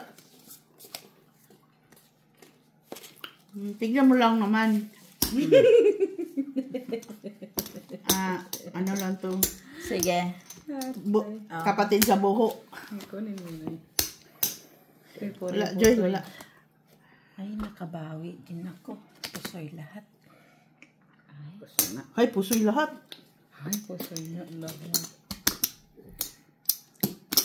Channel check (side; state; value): both; identical; correlation 1.00